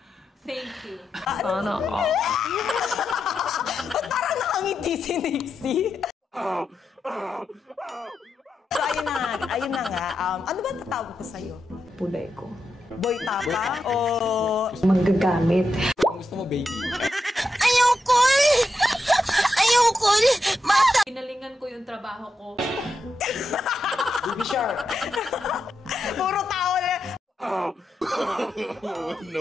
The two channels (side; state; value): both; normal; correlation 0.86